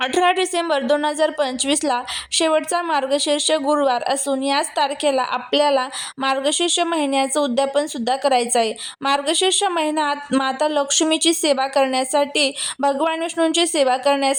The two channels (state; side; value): identical; both; correlation 1.00